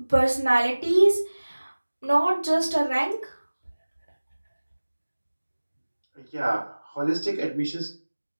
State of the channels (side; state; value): both; inverted; correlation -1.00